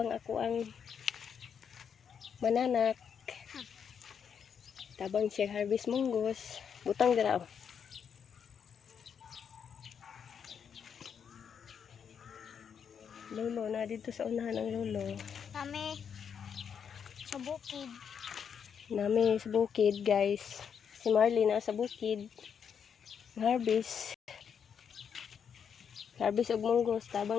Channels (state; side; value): quieter; right; 7.4 dB